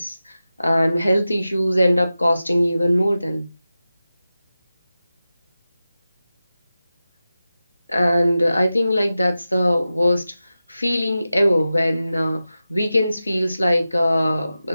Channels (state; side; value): inverted; both; correlation -0.94